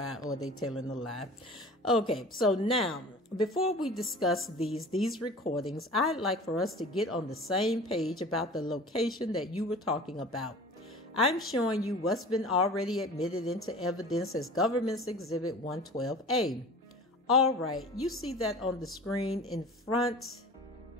or they telling a lie. Okay, so now, before we discuss these recordings, I'd like for us to get on the same page about the location that you were talking about. I'm showing you what's been already admitted into evidence as Government's Exhibit 112A. All right, you see that on the screen in front.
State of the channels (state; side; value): normal; both; correlation 0.40